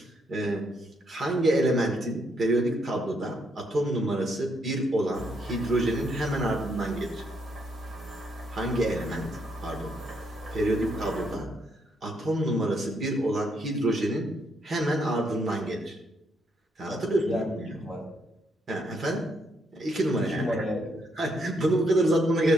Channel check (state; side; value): normal; both; correlation 0.75